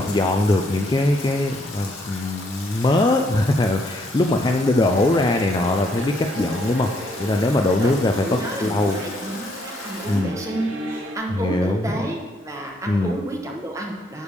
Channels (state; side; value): normal; both; correlation 0.71